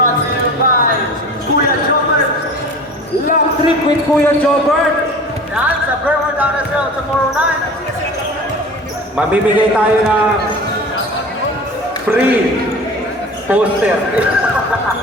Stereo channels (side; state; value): both; normal; correlation 0.38